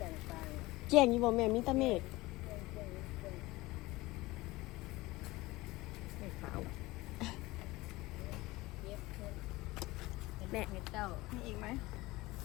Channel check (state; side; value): quieter; right; 20.1 dB